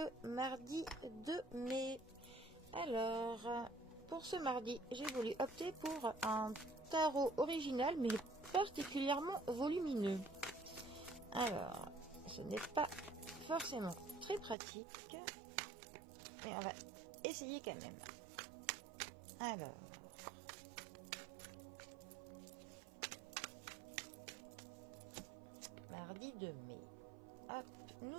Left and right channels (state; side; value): drops out; left; at 14.6 s